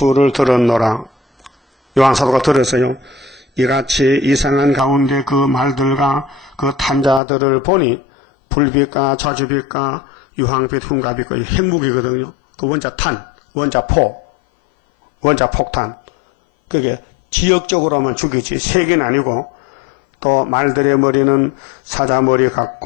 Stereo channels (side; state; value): right; drops out; at 7.2 s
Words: 들었노라. 요한사도가 들었어요. 이같이 이상한 가운데 그 말들과 그 탄자들을 보니 불빛과 저주빛과 유황빛 흉가빛과 핵무기거든요. 그 원자 탄, 원자 포, 원자 폭탄. 그게 지역적으로만 죽이지 세계는 아니고 또 말들의 머리는 사자머리